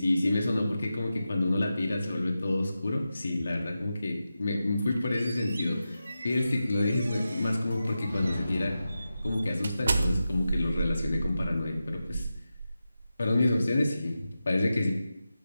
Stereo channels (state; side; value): inverted; both; correlation -0.91